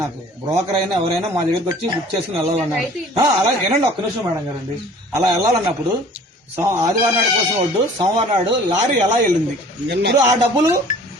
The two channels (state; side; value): normal; both; correlation 0.49